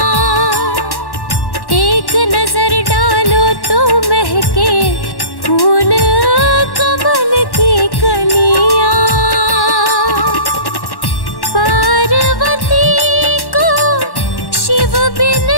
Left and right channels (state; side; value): late; right; 1.1 ms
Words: एक नजर डालो तो महके फूल कमल की कलियां। पार्वती को शिव बिन